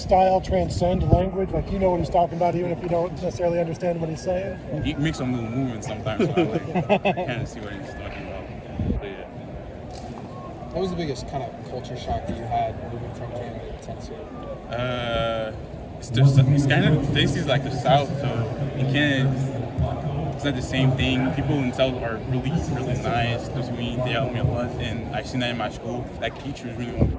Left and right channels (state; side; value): identical; both; correlation 1.00